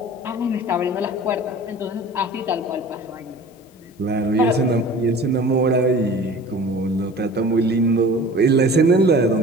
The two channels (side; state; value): both; normal; correlation 0.42